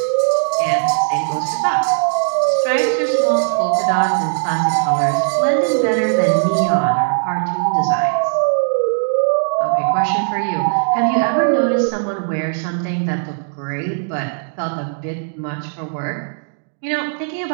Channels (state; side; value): silent; left; digital silence